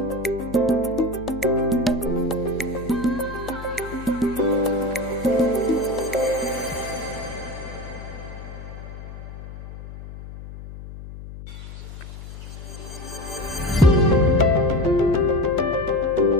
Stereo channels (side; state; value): left; noise; hum, 12 dB below the sound